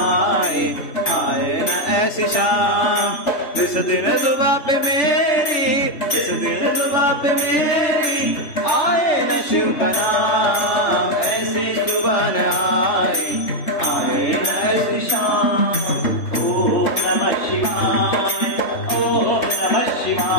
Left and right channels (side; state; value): right; late; 3.4 ms